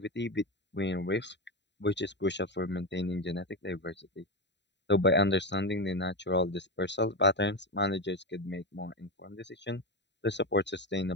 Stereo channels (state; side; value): late; right; 0.52 ms